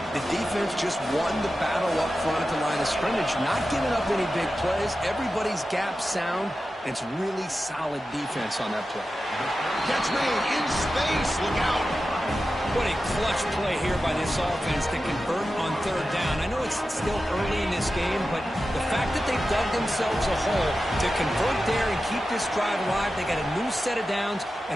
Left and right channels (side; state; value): both; normal; correlation 0.92